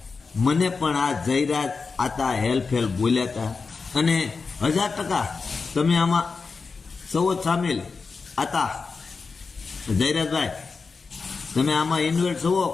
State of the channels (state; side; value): quieter; right; 4.6 dB